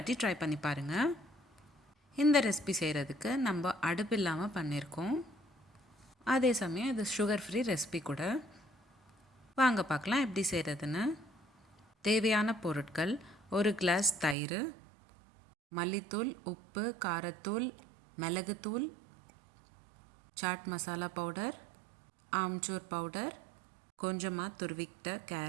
ட்ரை பண்ணி பாருங்கள். இந்த ரெசிபி செய்கிறதுக்கு நம்ம அடுப்பு இல்லாமல் பண்ணியிருக்கோம். அதே சமயம் இது சுகர் ஃப்ரீ ரெசிபி கூட. வாங்க பார்க்கலாம் எப்படி செய்கிறதுன்னு. தேவையான பொருட்கள்: ஒரு கிளாஸ் தயிர், மல்லித்தூள், உப்பு, காரத்தூள், மிளகுத்தூள், சாட் மசாலா பவுடர், ஆம்ச்சூர் பவுடர், கொஞ்சமாக துருவிக்கிட்ட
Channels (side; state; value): left; drops out; at 14.4 s